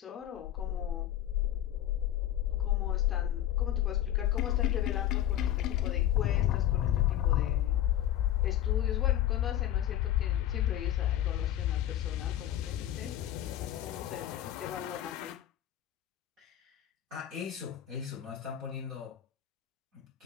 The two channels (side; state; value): right; quieter; 12.3 dB